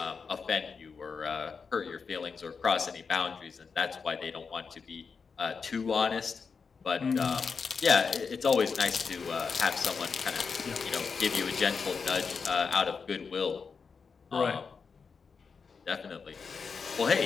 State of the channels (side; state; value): right; quieter; 5.4 dB